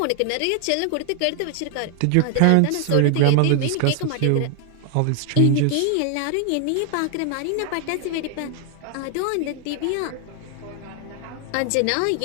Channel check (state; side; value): different; both; correlation 0.00